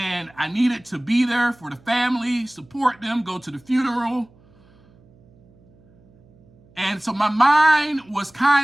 I needed to be there for the family, support them, go to the funeral. And so my mind was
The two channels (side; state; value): right; noise; hum, 29 dB below the sound